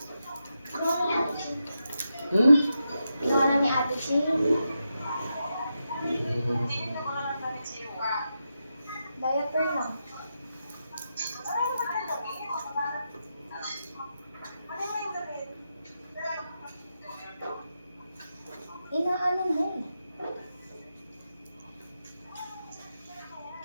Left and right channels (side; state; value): both; inverted; correlation -0.87